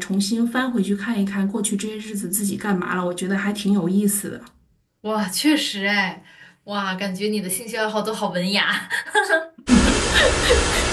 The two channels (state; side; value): identical; both; correlation 1.00